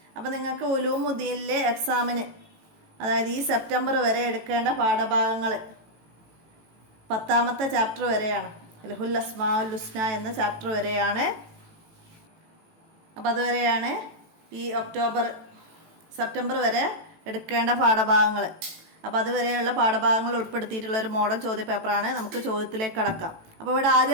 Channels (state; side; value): late; left; 18 ms